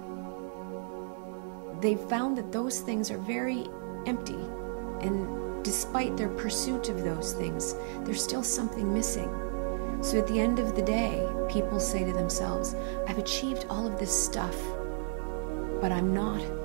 they've found that those things are very empty. And despite their pursuit of those things, there's still something missing. So at the end of the day, people say to themselves, I've achieved all of this stuff, but I'm not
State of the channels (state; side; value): silent; left; digital silence